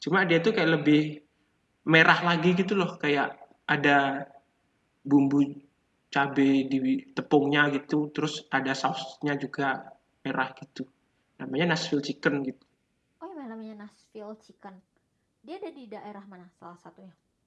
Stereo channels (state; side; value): identical; both; correlation 1.00